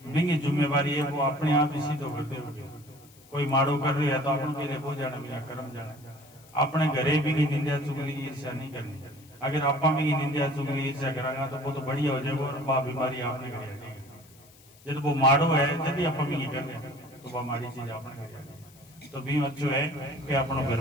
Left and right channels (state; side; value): noise; left; hiss, 25 dB below the sound